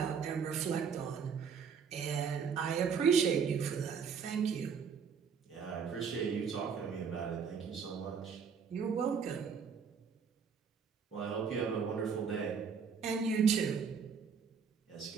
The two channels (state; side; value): quieter; left; 6.3 dB